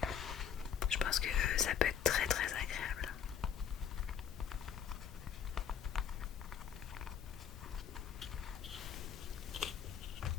Je pense que ça peut être très très agréable.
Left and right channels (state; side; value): quieter; right; 8.5 dB